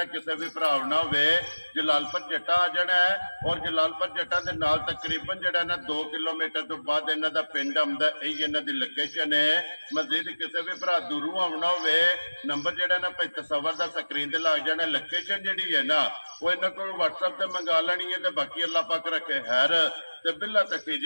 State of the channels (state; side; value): inverted; both; correlation -1.00